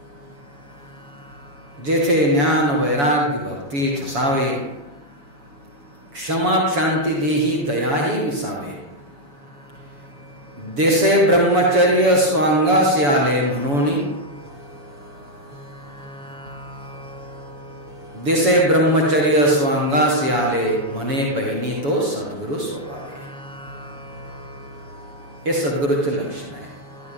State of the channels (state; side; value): late; left; 7.0 ms